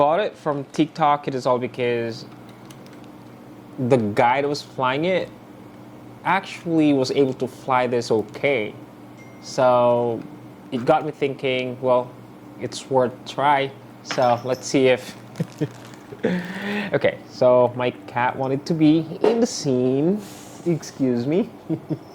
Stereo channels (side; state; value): both; identical; correlation 1.00